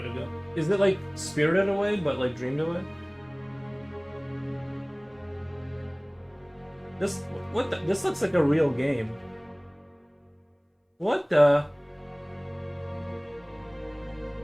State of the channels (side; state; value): both; identical; correlation 1.00